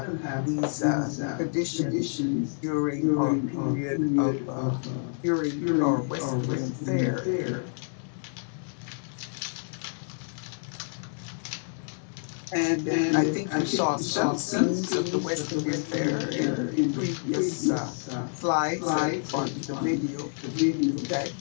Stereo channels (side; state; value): right; silent; digital silence